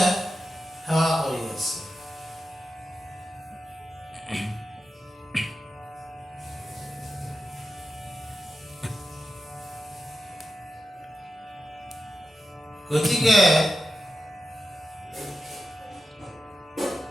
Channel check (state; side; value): normal; both; correlation 0.90